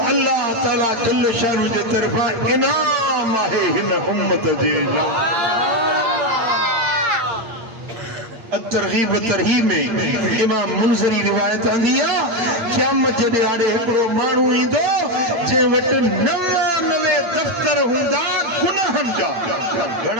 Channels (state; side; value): late; left; 8.7 ms